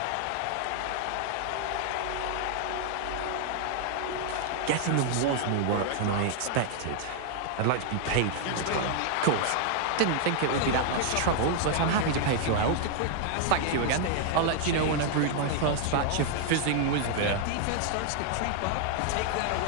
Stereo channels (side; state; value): both; different; correlation 0.00